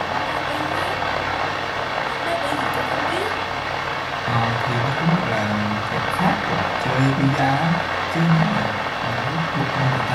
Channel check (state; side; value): identical; both; correlation 1.00